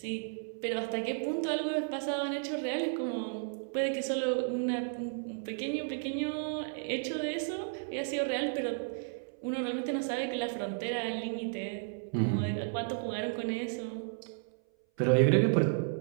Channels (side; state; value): left; silent; 56 dB below the other